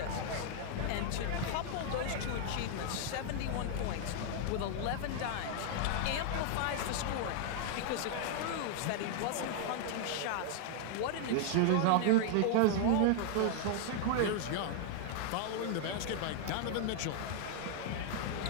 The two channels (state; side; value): different; both; correlation -0.01